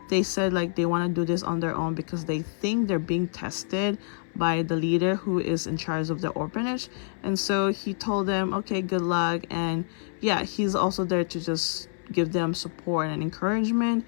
they said like they want to do this on their own because they think they're being tested by the leader who is in charge of the orphanage. And so he told them, okay, good luck. And yeah, he's also there to just give them support and encouragement.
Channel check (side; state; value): right; silent; 60 dB below the other